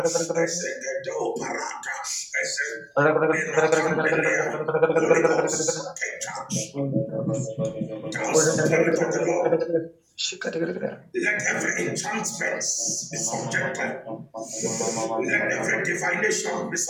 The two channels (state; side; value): identical; both; correlation 1.00